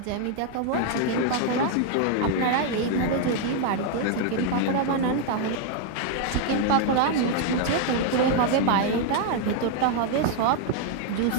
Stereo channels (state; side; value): different; both; correlation 0.00